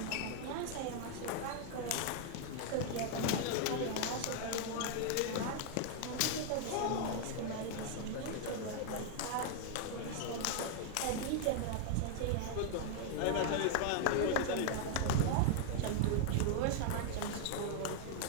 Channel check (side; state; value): both; different; correlation 0.00